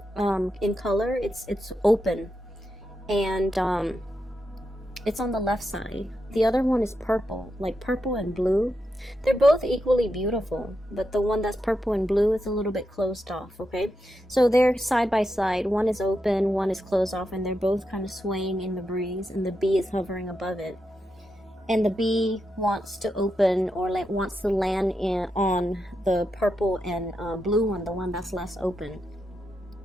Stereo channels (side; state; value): both; normal; correlation 0.86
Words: in color. It's open, and it's on the left side. The other one is purple, like purple and blue. They're both equally beautiful, but the one that's purple and blue is a little bit closed off, okay? So they're side by side. One is open, one is closed off, and they're both kind of swaying in the breeze, and the bee is hovering above it. And the bee wants to open or wants to land on the purple and blue one, the one that's less open.